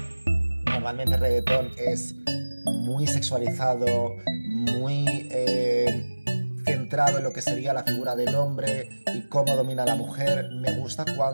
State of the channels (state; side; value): inverted; both; correlation -1.00